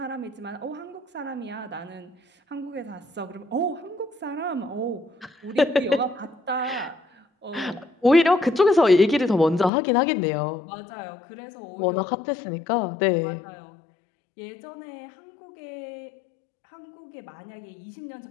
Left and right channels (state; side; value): drops out; right; at 9.7 s